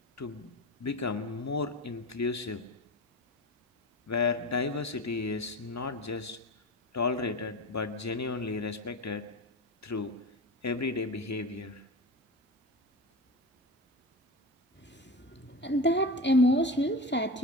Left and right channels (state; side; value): normal; both; correlation 0.28